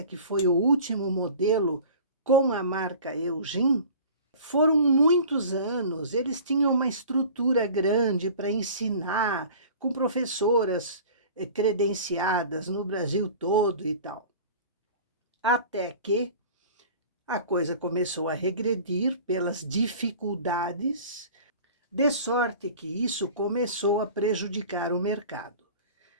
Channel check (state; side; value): inverted; both; correlation -0.42